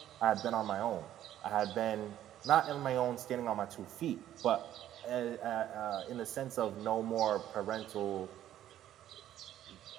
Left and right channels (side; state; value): left; quieter; 12.0 dB